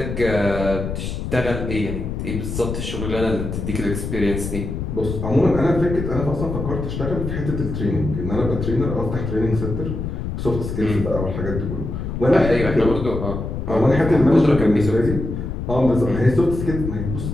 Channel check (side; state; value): left; noise; rumble, 4 dB below the sound